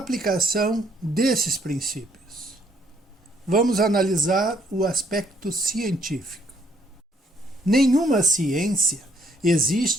desses princípios. Vamos analisar o aspecto científico. Nenhuma ciência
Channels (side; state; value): both; normal; correlation 0.67